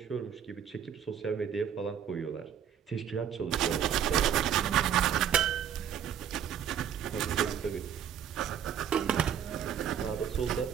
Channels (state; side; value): quieter; left; 8.8 dB